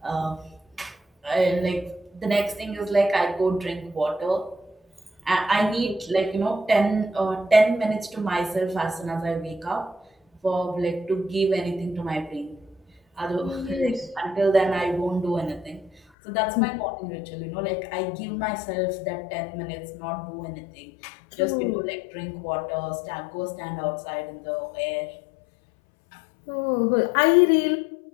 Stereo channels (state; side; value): drops out; right; at 16.0 s